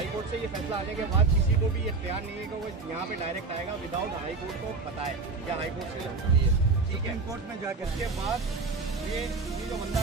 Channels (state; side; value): quieter; left; 4.1 dB